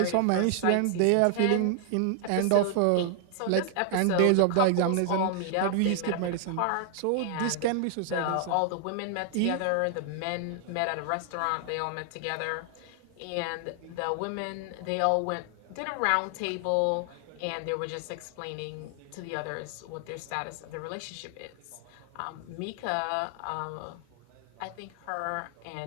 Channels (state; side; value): different; both; correlation 0.00